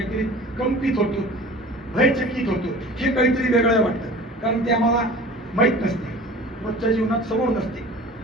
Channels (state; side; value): normal; both; correlation 0.42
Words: कंपित होतो, भयचकित होतो, हे काहीतरी वेगळं वाटतं, कारण ते आम्हाला माहीत नसते, रोजच्या जीवनात समोर नसते.